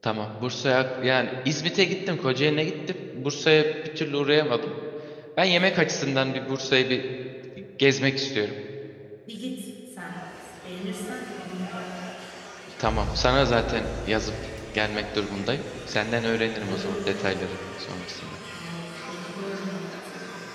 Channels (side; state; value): both; identical; correlation 1.00